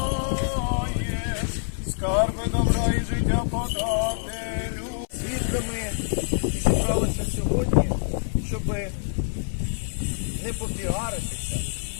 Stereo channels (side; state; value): right; silent; 61 dB below the other